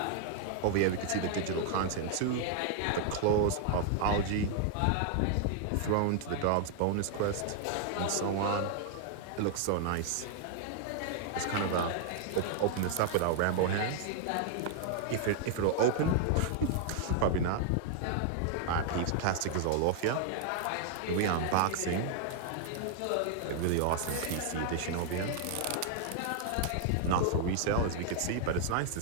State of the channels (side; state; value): both; different; correlation 0.00